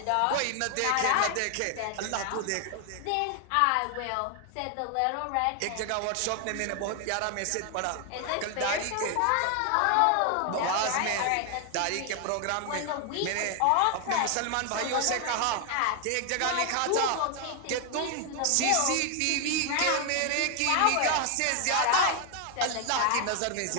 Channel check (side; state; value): both; different; correlation 0.00